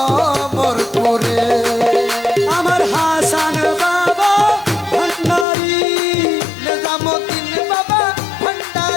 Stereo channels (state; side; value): drops out; right; at 5.5 s